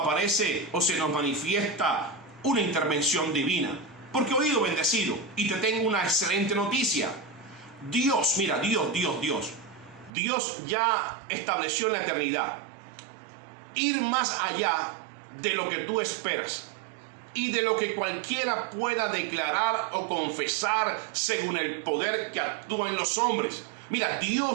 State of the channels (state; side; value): drops out; left; at 10.1 s